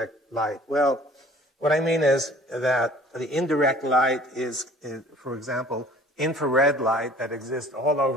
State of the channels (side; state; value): both; normal; correlation 0.50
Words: light? Well, what I mean is that the indirect light is for example, infrared light that exists all